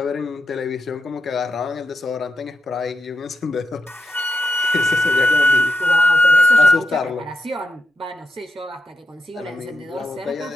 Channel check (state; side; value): normal; both; correlation 0.85